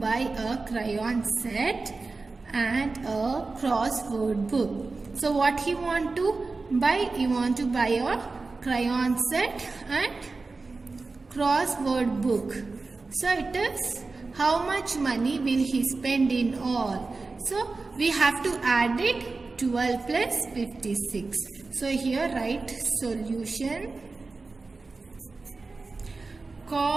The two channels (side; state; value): left; quieter; 3.8 dB